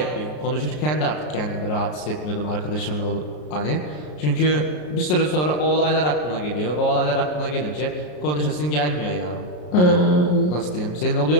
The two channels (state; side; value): late; right; 33 ms